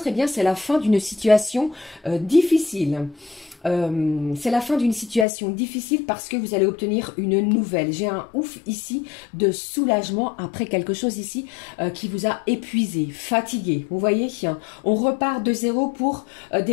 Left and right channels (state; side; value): drops out; right; at 5.2 s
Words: eh bien, c'est la fin d'une situation difficile. C'est la fin d'une situation difficile parce que vous allez obtenir une nouvelle. J'ai un ouf ici de soulagement après quelque chose ici qui vous a épuisé, fatigué. Vous voyez, on repart de zéro pour